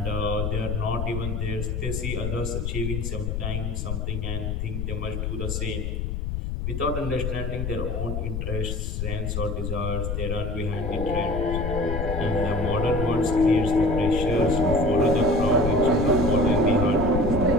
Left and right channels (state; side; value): noise; left; rumble, 2 dB below the sound